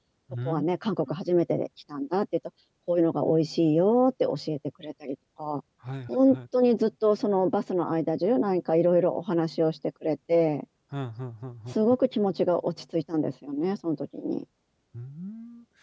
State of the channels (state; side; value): identical; both; correlation 1.00